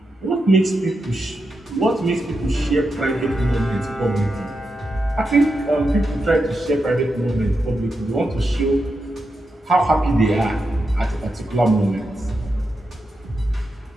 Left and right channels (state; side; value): normal; both; correlation 0.87